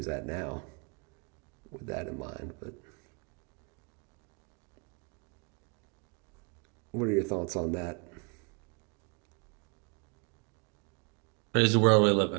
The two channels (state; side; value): quieter; left; 35.3 dB